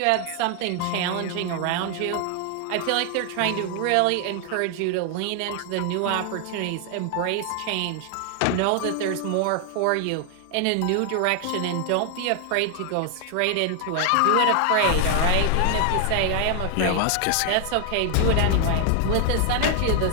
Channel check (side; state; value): both; different; correlation 0.00